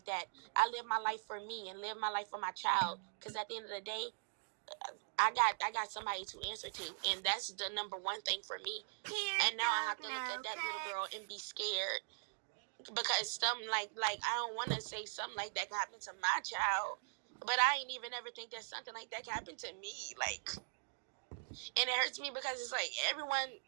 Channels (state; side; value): silent; left; digital silence